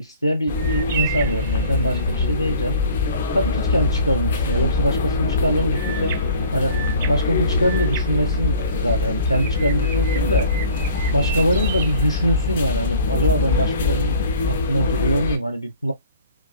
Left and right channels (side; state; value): both; inverted; correlation -0.49